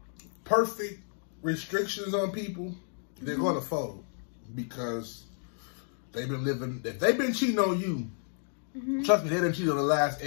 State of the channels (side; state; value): right; silent; 57 dB below the other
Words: perfect restrictions on people, they're gonna fold because they've been living. If they've been cheating on you, trust me, they didn't cheat on the last